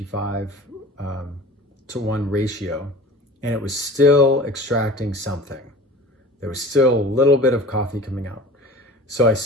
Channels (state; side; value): normal; both; correlation 0.41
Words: to 1 ratio, and it was still extracting something. There was still a little bit of coffee coming out. So I